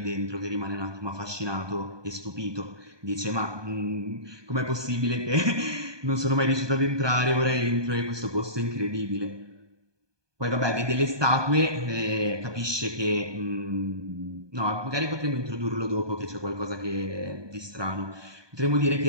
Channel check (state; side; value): late; left; 1.2 ms